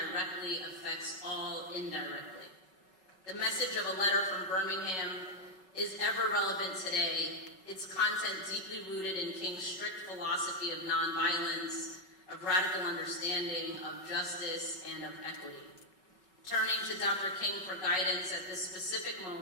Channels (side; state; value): right; late; 5.3 ms